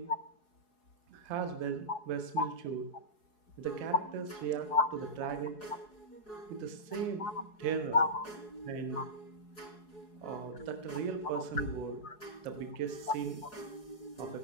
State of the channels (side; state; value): right; late; 4.7 ms